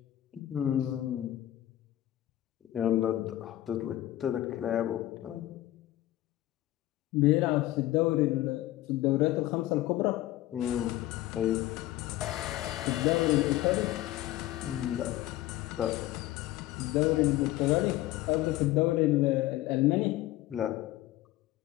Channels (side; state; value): right; quieter; 15.3 dB